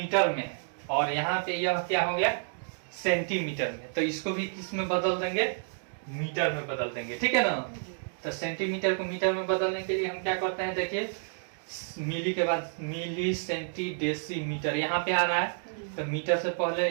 में है और यहाँ पे यह क्या हो गया, सेंटीमीटर में, तो इसको भी किस में बदल देंगे, मीटर में बदल देंगे, ठीक है ना। तो सेंटीमीटर को मीटर में बदलने के लिए हम क्या करते हैं, देखिए मिली के बाद मिली, सेंटी, डेसी, मीटर यहाँ पे आ रहा है, तो मीटर से पहले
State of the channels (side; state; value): left; silent; digital silence